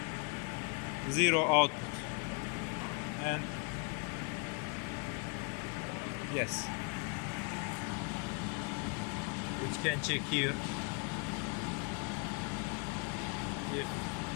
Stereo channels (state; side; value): quieter; right; 33.4 dB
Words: 0 output, and yes, which can check here if